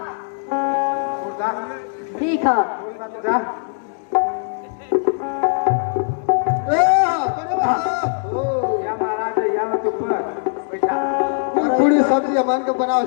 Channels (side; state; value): right; silent; 66 dB below the other